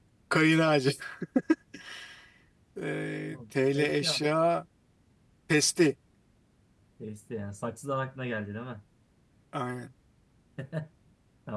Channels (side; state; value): both; identical; correlation 1.00